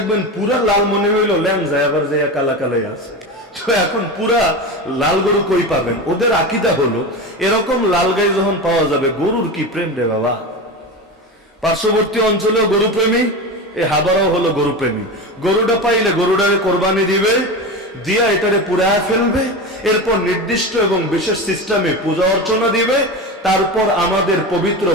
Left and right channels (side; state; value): both; normal; correlation 0.24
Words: পুরা লাল মনে হইলো ল্যাম যায়, আবার যায় কালা কালাই আছে। তো এখন পুরা লাল গরু কই পাবেন? ওদের আকীদা হলো এরকম লাল গাই যখন পাওয়া যাবে, গরুর কি প্রেম রে বাবা। পার্শ্ববর্তী অঞ্চলেও গরু প্রেমী, এই হাবারাও হলো গরু প্রেমী। গরুটা পাইলে গরুটারে কোরবানি দিবে, দিয়া এটারে পুড়ায় ফেলবে, এরপর নির্দিষ্ট এবং বিশেষ সিস্টেমে পূজা অর্চনা দিবে, তারপর আমাদের পবিত্র